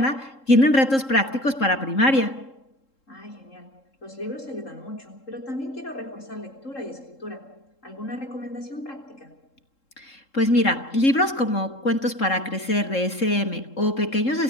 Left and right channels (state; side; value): late; right; 3.7 ms